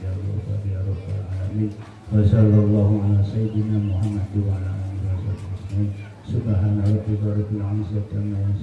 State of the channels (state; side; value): identical; both; correlation 1.00